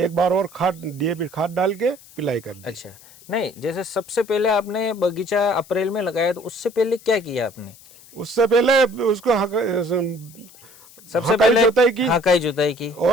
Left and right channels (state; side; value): noise; left; hiss, 23 dB below the sound